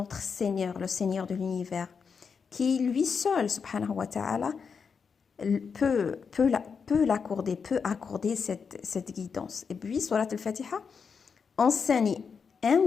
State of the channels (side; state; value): right; quieter; 5.9 dB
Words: Seigneur, le Seigneur de l'univers, qui lui seul, subhanahu wa ta'ala, peut accorder cette guidance. Et puis, Surat al-Fatiha enseigne